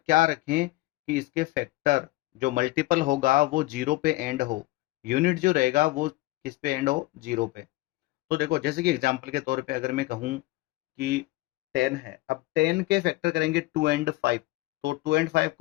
रखें कि इसके फैक्टर जो मल्टीपल होगा वो जीरो पे एंड हो, यूनिट जो रहेगा वो किस पे एंड हो, जीरो पे। तो देखो जैसे कि एग्जांपल के तौर पे अगर मैं कहूँ कि 10 है, अब 10 के फैक्टर करेंगे 2 एंड 5, तो 2 एंड 5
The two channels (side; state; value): right; quieter; 19.8 dB